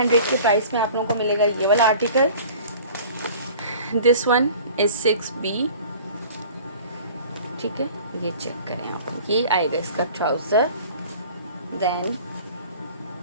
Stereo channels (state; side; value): inverted; both; correlation -0.45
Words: के प्राइस में आप लोगों को मिलेगा ये वाला article. This one is 6B। ठीक है, ये चेक करें आप, ये आएगा इसका ट्राउज़र, देन